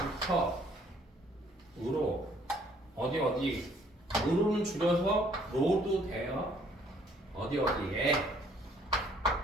으로 어디 으로는 줄여서 로도 돼요. 어디에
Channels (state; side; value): normal; both; correlation 0.62